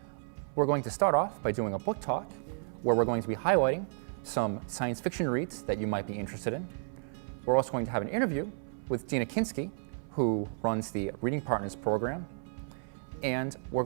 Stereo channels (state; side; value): silent; left; 56 dB below the other